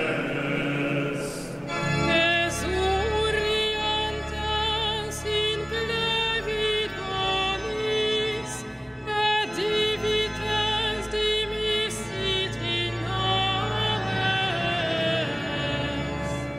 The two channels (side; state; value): both; identical; correlation 1.00